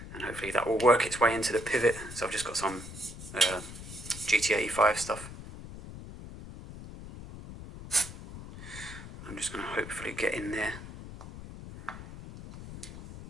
and hopefully that will work its way into the pivot. So I've just got some GT85 stuff. I'm just going to hopefully get in there.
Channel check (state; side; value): noise; left; rumble, 12 dB below the sound